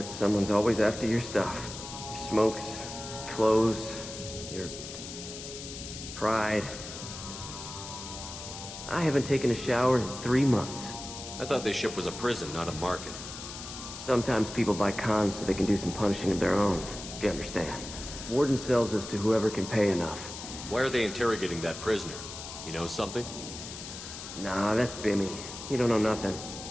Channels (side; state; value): left; noise; hiss, 10 dB below the sound